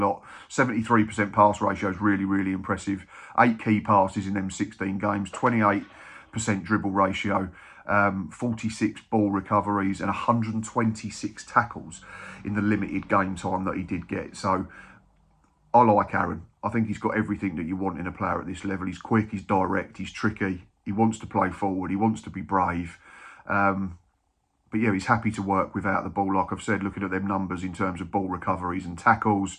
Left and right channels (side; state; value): both; identical; correlation 1.00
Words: 73% pass ratio is really, really impressive. 8 key passes in them 16 games, 28% dribble ratio, 46 ball recoveries and 126 tackles in the limited game time that he did get. So I like Aaron. I think he's got everything that you want in a player at this level. He's quick, he's direct, he's tricky. He wants to play forward, he wants to be brave. But yeah, he's happy to work without the ball. Like I've said, looking at them numbers in terms of ball recoveries and tackles,